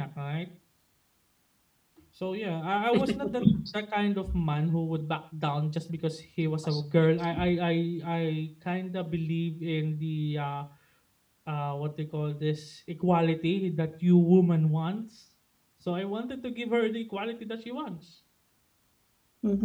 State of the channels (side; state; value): both; identical; correlation 1.00